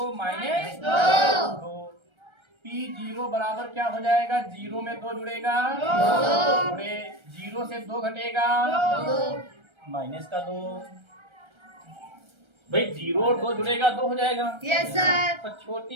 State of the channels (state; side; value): late; left; 1.3 ms